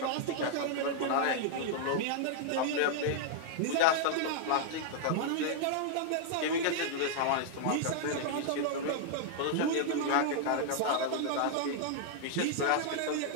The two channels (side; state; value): both; different; correlation -0.01